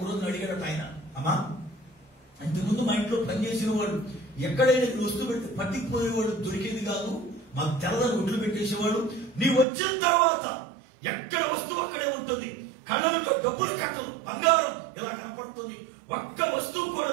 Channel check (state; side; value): drops out; left; at 9.7 s